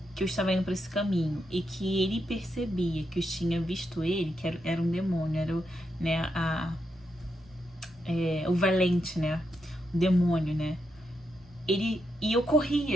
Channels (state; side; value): normal; both; correlation 0.83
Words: que eu estava indo para esse caminho e que ele percebia que eu tinha visto ele, que era um demônio, era o valente, né? O demônio, né? E eu